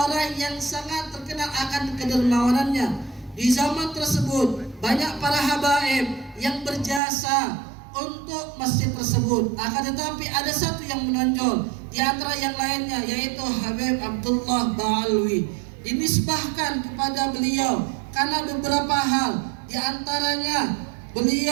yang sangat terkenal akan kedermawanannya. Di zaman tersebut banyak para habaib yang berjasa untuk masjid tersebut. Akan tetapi ada satu yang menonjol di antara yang lainnya, yaitu Habib Abdullah Ba'alawi. Dinisbahkan kepada beliau karena beberapa hal. Di antaranya,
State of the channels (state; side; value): drops out; left; at 7.0 s